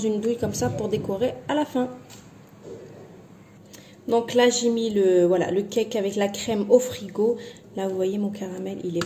douille comme ça pour décorer à la fin. Donc là j'ai mis le cake avec la crème au frigo. Là vous voyez mon caramel il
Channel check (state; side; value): identical; both; correlation 1.00